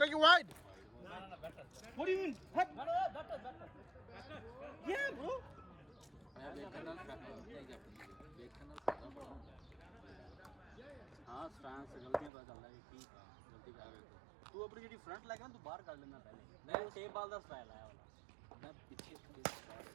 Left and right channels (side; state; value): left; drops out; at 12.3 s